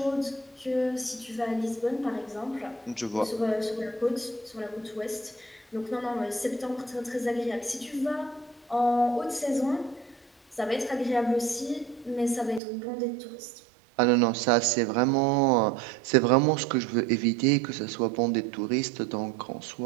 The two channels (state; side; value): drops out; left; at 12.6 s